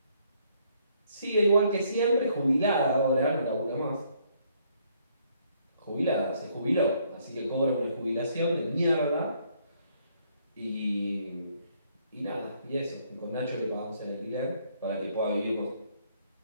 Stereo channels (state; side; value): inverted; both; correlation -0.68